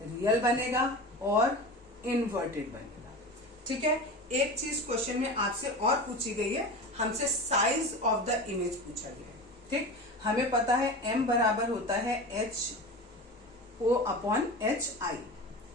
रियल बनेगा और इन्वर्टेड बनेगा। ठीक है, एक चीज क्वेश्चन में आपसे और पूछी गई है, हमसे साइज ऑफ द इमेज पूछा गया है। ठीक, हमें पता है m बराबर होता है HO अपॉन HI।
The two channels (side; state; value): both; normal; correlation 0.30